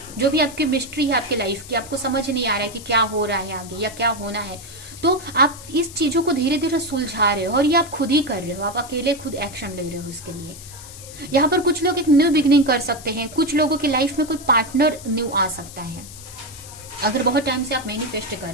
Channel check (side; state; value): left; noise; hiss, 15 dB below the sound